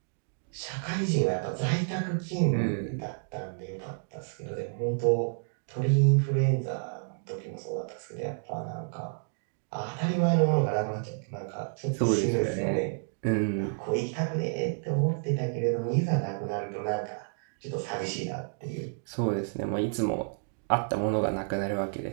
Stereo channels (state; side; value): silent; left; digital silence